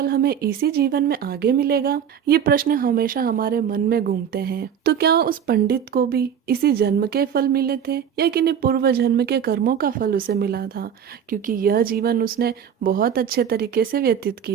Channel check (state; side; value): quieter; left; 8.4 dB